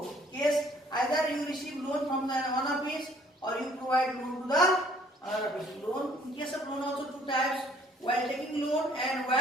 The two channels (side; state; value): both; normal; correlation 0.59